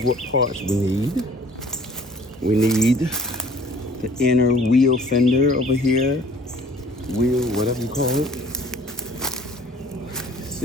what parts we need. We need the inner wheel fender over here. Wheel, whatever you call it.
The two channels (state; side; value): normal; both; correlation 0.53